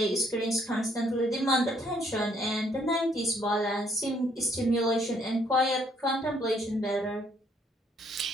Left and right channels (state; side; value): normal; both; correlation 0.67